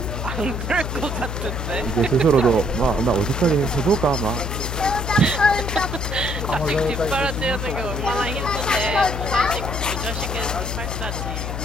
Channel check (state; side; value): noise; left; hum, 4 dB below the sound